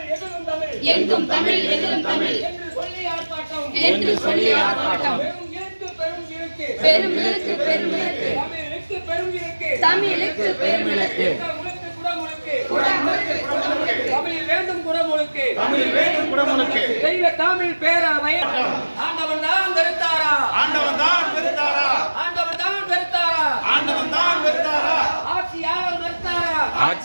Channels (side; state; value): both; inverted; correlation -1.00